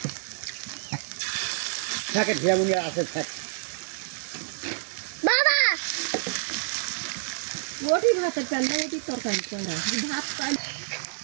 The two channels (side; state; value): left; silent; digital silence